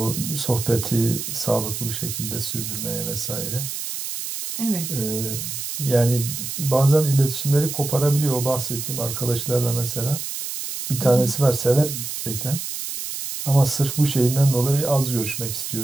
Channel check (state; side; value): noise; right; hiss, 6 dB below the sound